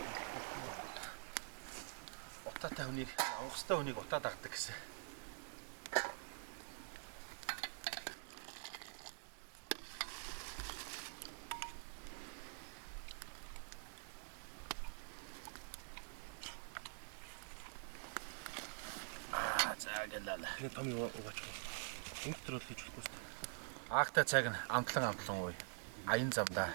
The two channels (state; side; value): silent; left; digital silence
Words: Утаатай хүнийг авах хэвээр хүнийг утаа дагдаг гэсэн. Заагалаа. Томь угаач. Интрол хийж болохгүй шүү. Аахтай цаг нь амтлан ууй. Аян замдаа